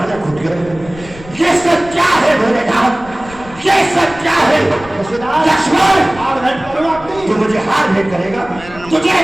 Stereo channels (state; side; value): noise; left; rumble, 18 dB below the sound